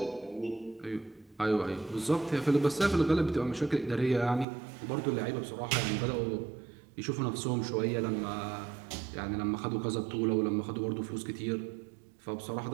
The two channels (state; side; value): drops out; left; at 4.5 s